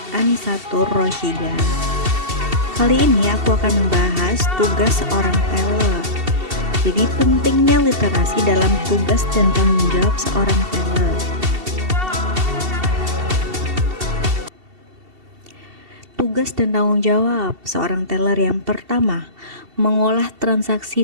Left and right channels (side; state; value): left; late; 2.7 ms